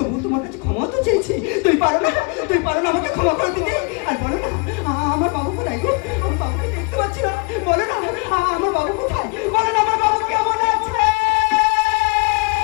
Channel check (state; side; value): quieter; right; 31.5 dB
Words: তোমার কাছে ক্ষমা তো চেয়েছি। তুমি পারো না আমাকে ক্ষমা করে দিতে? আর বলো না আমার বাবু কোথায় গো? আমার বাবুকে দেখতে পাচ্ছি না। বলো না আমার বাবু কোথায়? বলো না আমার বাবু কেমন আছে?